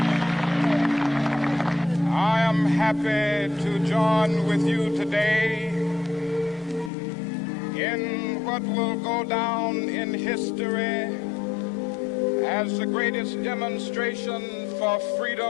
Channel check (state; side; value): drops out; right; at 6.9 s